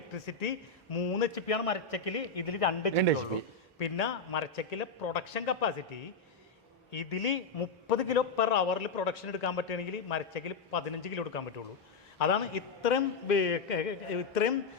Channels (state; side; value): quieter; right; 4.3 dB